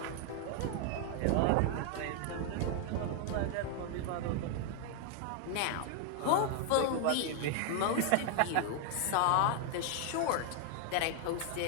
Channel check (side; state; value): both; different; correlation 0.00